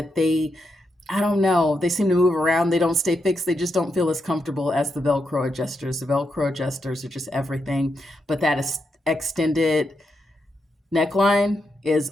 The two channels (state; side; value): normal; both; correlation 0.84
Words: I don't know, they seem to move around. They don't stay fixed. They just don't feel as comfortable as the Velcro adjusters. The Velcro adjusters are just everything. But that is extended neckline is